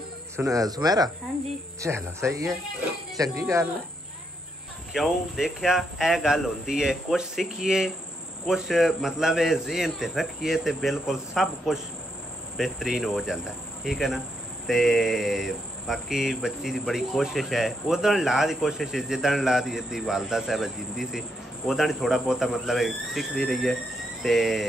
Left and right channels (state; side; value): normal; both; correlation 0.78